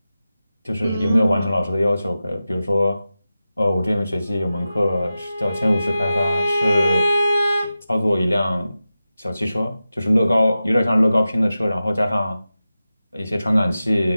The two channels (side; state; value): both; inverted; correlation -0.93